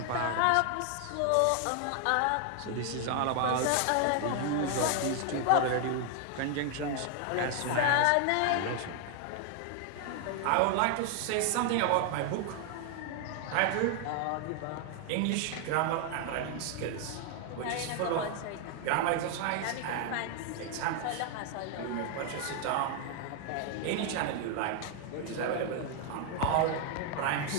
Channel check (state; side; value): different; both; correlation 0.00